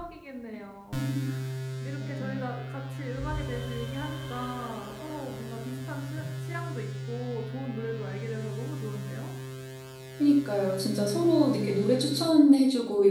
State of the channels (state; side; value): identical; both; correlation 1.00